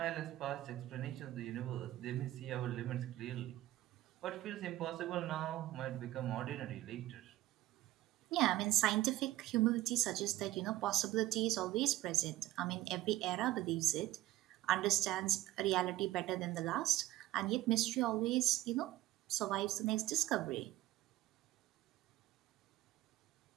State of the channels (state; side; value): quieter; left; 15.9 dB